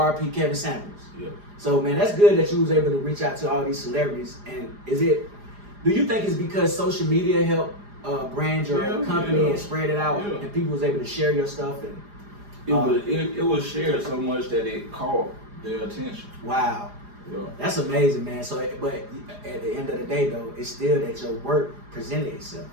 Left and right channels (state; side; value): late; left; 4.9 ms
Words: Kevin Samuels. Yeah. So, man, that's good that you was able to reach out to all these celebrities. And do you think it's because social media helped brand your company and spread it out, and people was able to share your stuff? And it was shared so much that it caught their attention. Wow. Yeah. That's amazing, man. So, but at the end of the day, though, it's still that your work presented itself.